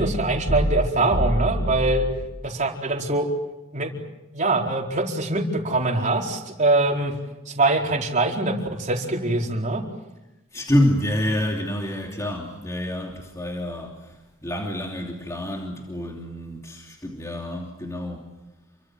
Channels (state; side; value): normal; both; correlation 0.32